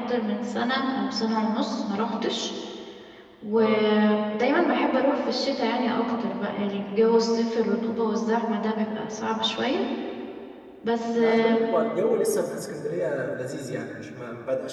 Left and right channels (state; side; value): identical; both; correlation 1.00